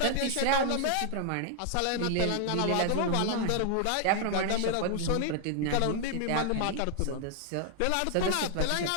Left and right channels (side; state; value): both; different; correlation 0.00